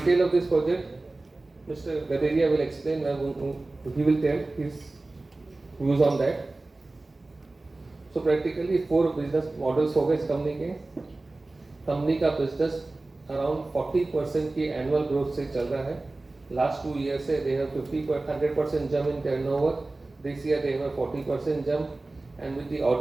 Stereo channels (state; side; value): quieter; left; 3.1 dB